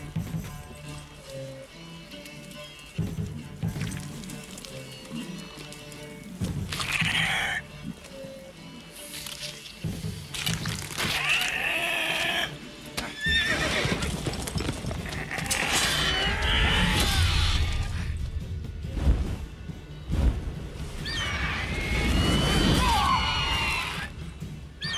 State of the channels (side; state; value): both; identical; correlation 1.00